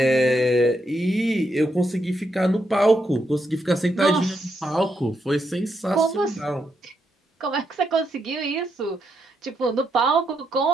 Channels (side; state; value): both; normal; correlation 0.80